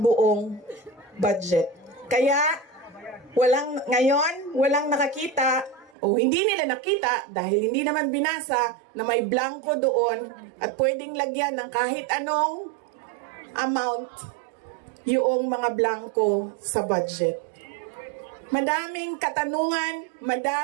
budget. Kaya walang nakakita o hindi nila nakita dahil hindi naman binasa na may blanco doon at pwedeng lagyan ng kahit anong amount yung mga blanco sa budget. Madaming katanungan,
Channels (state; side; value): drops out; left; at 6.0 s